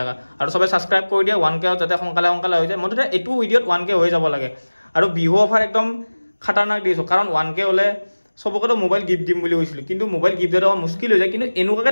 আৰু সবে সাবস্ক্ৰাইব কৰি দিয়া 1K যাতে সোনকালে হৈ যায় মতে এটো ভিডিওত 1K হৈ যাব লাগে আৰু বিহু অফাৰ একদম খতৰনাক দিছো কাৰণ 1K হলে সবকটো মোবাইল গিফট দিম বুলি কৈছিল কিন্তু মোবাইল গিফট দেওয়া মুশকিল হৈ যায় কিন্তু এনুকাকে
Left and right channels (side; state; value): both; inverted; correlation -1.00